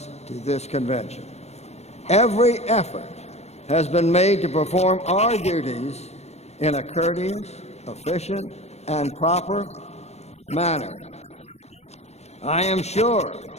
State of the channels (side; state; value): right; late; 0.31 ms